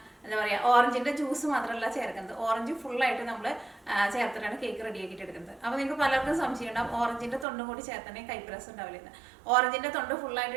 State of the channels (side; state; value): left; drops out; at 7.5 s